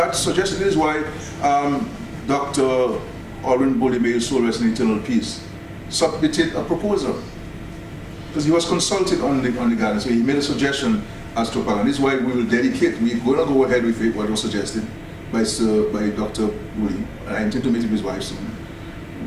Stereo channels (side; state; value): both; identical; correlation 1.00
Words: suggestions. This is why Dr. Alwyn Bully, may his soul rest in eternal peace, submitted a proposal because he was consulted on the garden. So he made a suggestion as to and this is why we will dedicate. We're going to go ahead with what was suggested by Dr. Bully. I intend to meet with his wife soon,